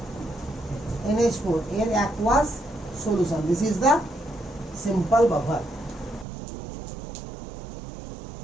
NH4 এর aqueous solution. This is the simple buffer.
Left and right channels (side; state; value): left; drops out; at 6.2 s